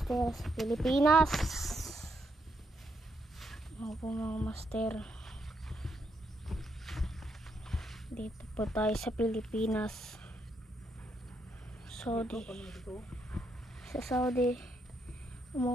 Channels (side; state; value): both; normal; correlation 0.78